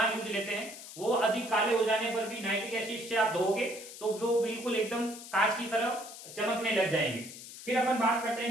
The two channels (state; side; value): noise; left; hiss, 13 dB below the sound